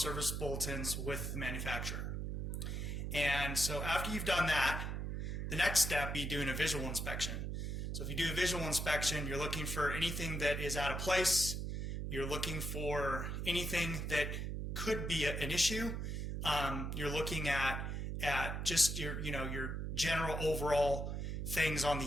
bulletins with the manufacturer. And so after you've done that, the next step be doing a visual inspection. So if you do a visual inspection, you're looking for anything that is out of place. You're looking for anything that could be an issue. You're looking at just your general overall things on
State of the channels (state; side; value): noise; right; hum, 3 dB below the sound